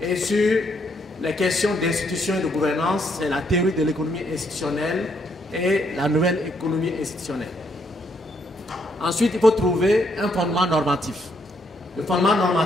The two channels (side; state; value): both; normal; correlation 0.73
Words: Et sur les questions d'institution et de gouvernance, c'est la théorie de l'économie institutionnelle et la nouvelle économie institutionnelle. Ensuite, il faut trouver un fondement normatif. Le fondement